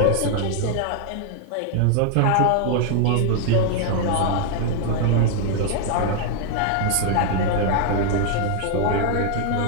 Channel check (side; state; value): both; different; correlation 0.00